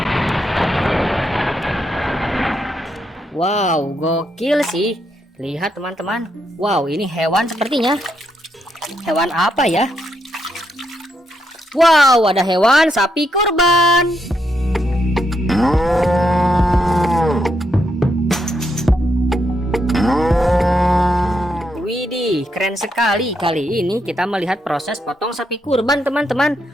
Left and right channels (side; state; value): both; normal; correlation 0.79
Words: Wow, gokil sih. Lihat teman-teman. Wow, ini hewan sepertinya. Hewan apa ya? Wow, ada hewan sapi kurban. Widih, keren sekali. Kali ini kita melihat proses potong sapi kurban